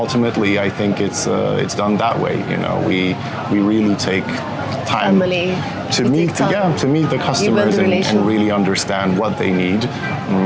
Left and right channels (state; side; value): identical; both; correlation 1.00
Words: I think it's done that way. You know, we really take time to meet the customers and really understand what they need,